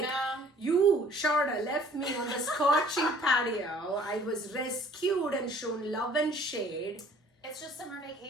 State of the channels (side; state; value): both; normal; correlation 0.55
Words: no. You, Sharda, left me on the scorching patio. I was rescued and shown love and shade. It's just summer